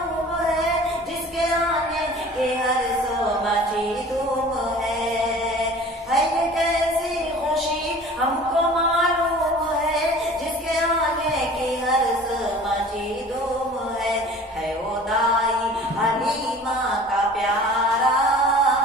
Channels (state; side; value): normal; both; correlation 0.44